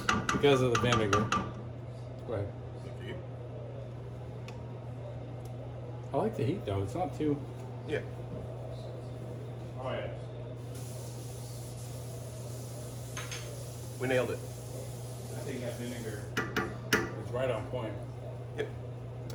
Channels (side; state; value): both; identical; correlation 1.00